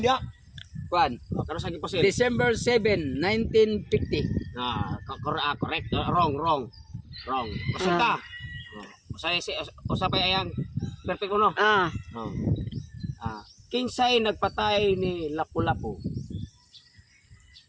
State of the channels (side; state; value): both; identical; correlation 1.00